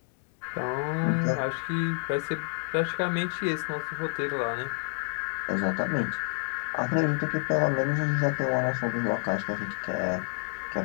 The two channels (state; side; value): silent; right; 58 dB below the other